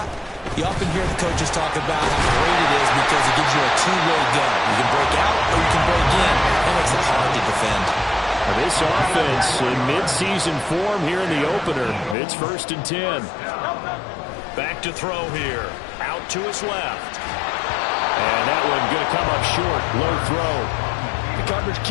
you often hear the coaches talk about how great it is because it gives you a two-way go. You can break out or you can break in. That makes it hard to defend. This offense in mid-season form here in the opener. It's 1st and 10. Back to throw here. Out to his left. And that one going to come up short. Low throw. The coverage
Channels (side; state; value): right; drops out; at 12.2 s